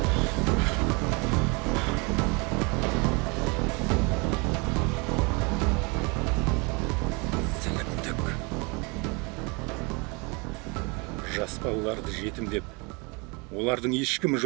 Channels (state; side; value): quieter; left; 29.6 dB